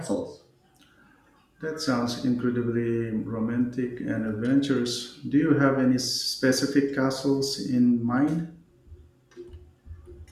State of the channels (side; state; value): both; identical; correlation 1.00